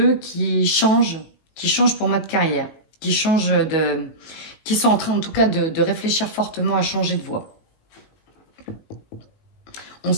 qui changent pour moi de carrière, qui sont en train, en tout cas, de réfléchir fortement à changer de voie. On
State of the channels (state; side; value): late; right; 19 ms